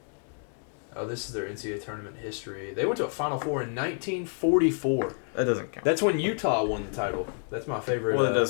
Oh, this is their NCAA Tournament history. They went to a Final Four in 1944. That doesn't count. That's when Utah won the title. That's my favorite. Well, it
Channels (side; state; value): right; silent; 57 dB below the other